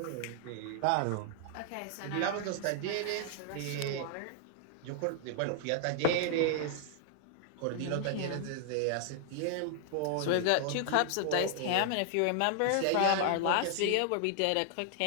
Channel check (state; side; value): different; both; correlation 0.00